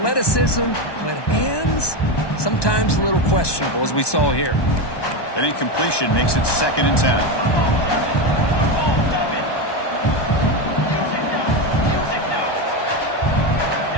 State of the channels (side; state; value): right; late; 1.2 ms